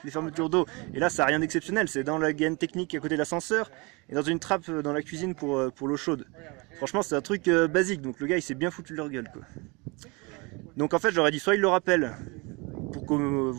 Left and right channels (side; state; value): left; quieter; 27.8 dB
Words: fermetures d'eau. Et là ça n'a rien d'exceptionnel, c'est dans la gaine technique à côté de l'ascenseur et dans une trappe dans la cuisine pour l'eau chaude. Franchement c'est un truc basique, donc le gars il s'est bien foutu de leur gueule quoi. Donc en fait je leur ai dit soit il le rappelle, pour que